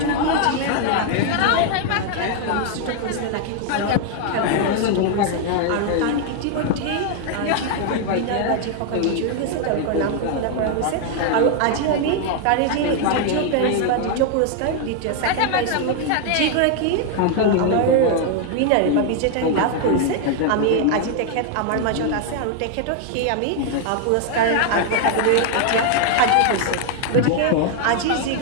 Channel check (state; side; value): different; both; correlation 0.00